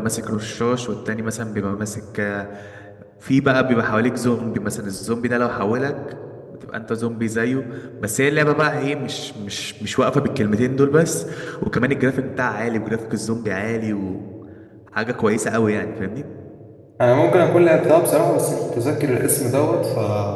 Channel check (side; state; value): both; identical; correlation 1.00